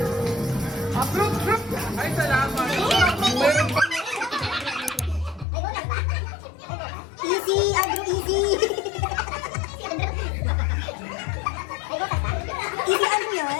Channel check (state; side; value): drops out; right; at 5.5 s